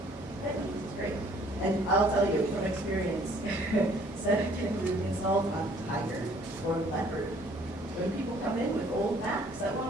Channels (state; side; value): normal; both; correlation 0.59